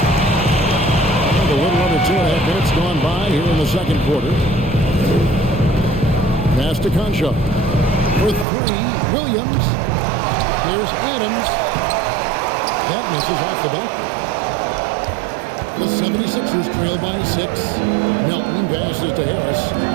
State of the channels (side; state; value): left; drops out; at 8.5 s